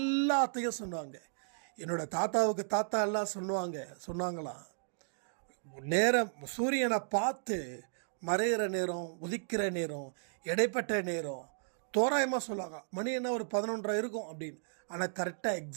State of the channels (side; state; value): left; silent; digital silence